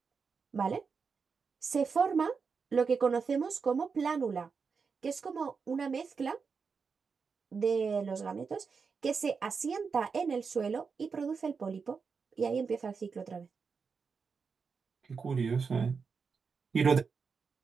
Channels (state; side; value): quieter; left; 5.4 dB